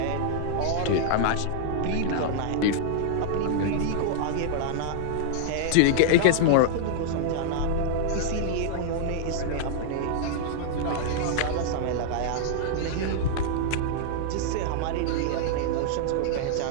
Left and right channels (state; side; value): different; both; correlation -0.01